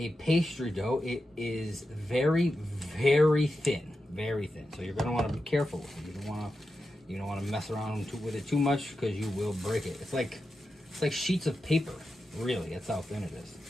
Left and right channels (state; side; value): normal; both; correlation 0.89